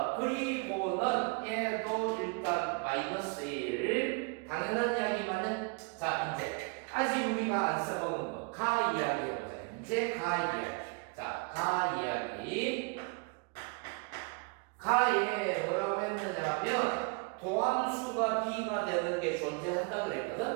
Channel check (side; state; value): left; quieter; 32.5 dB